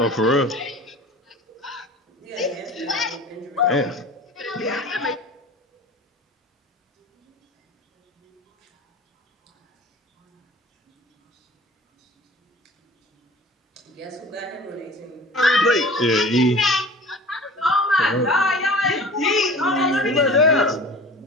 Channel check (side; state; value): both; normal; correlation 0.40